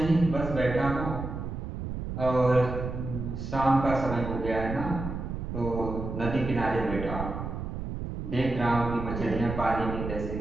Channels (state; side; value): noise; right; rumble, 6 dB below the sound